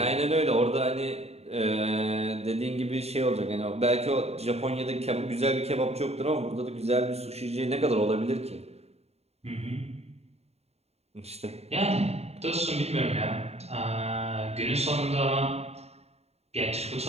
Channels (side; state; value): left; late; 0.30 ms